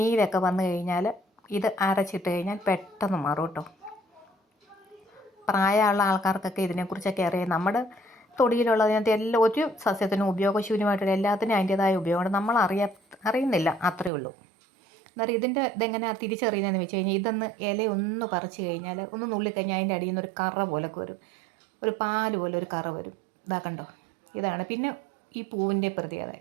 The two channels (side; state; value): left; drops out; at 14.1 s